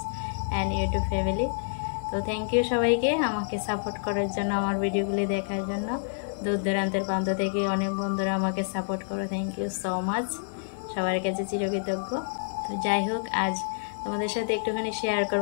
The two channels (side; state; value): right; silent; digital silence